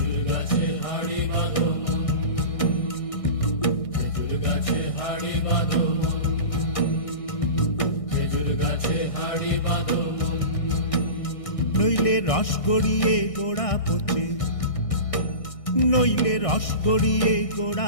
গাছে হাড়ি বাঁধো মন, খেজুর গাছে হাড়ি বাঁধো মন, খেজুর গাছে হাড়ি বাঁধো মন। নইলে রস গড়িয়ে গোড়া পচে, নইলে রস গড়িয়ে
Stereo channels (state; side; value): late; right; 1.6 ms